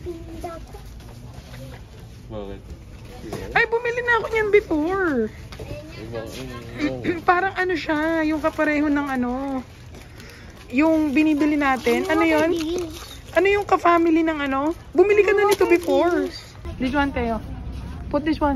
Bakit? Ay, bumili na ako niyan before. Parang ano siya, yung kapareho ng ano, yung binibili natin. Ano yun? Ano yung ka-family ng ano? Bumili ka na nito before. This one, Teo. Put this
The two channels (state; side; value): identical; both; correlation 1.00